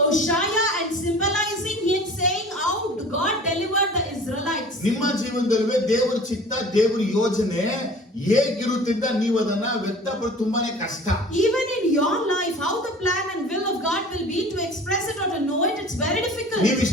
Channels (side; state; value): both; normal; correlation 0.44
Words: and symbolizing him, saying how God delivered the Israelites. ನಿಮ್ಮ ಜೀವನದಲ್ಲಿ ದೇವರ ಚಿತ್ತ ದೇವರ ಯೋಜನೆ ಹೇಗಿರುತ್ತಿದ್ದ ನೀವು ಅದನ್ನ ವ್ಯಕ್ತಪಡಿಸೋದು ತುಂಬಾನೇ ಕಷ್ಟ. Even in your life, how the plan and will of God will be, to express it or to know it, it's very difficult. ನೀವು